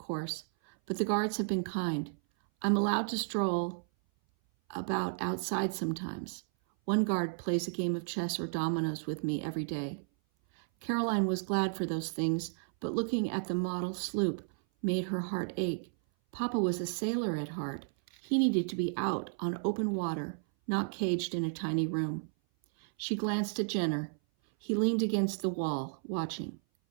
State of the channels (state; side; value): silent; left; 56 dB below the other